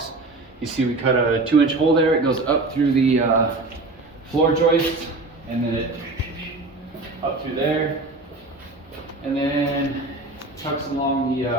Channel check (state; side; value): quieter; left; 3.2 dB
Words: You see we cut a 2-inch hole there. It goes up through the floor joist, and then it up through there, and then tucks along the